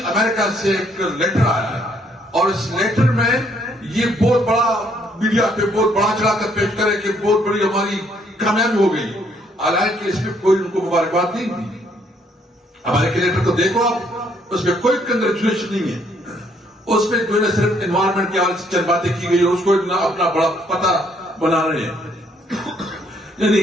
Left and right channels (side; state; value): both; normal; correlation 0.68